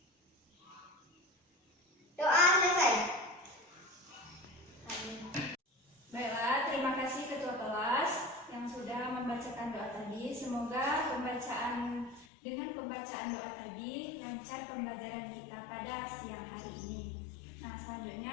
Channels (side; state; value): right; drops out; at 12.2 s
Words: Doa selesai. Baiklah, terima kasih ketua kelas yang sudah membacakan doa tadi. Semoga dengan pembacaan doa tadi lancar pembelajaran kita pada siang hari ini. Nah,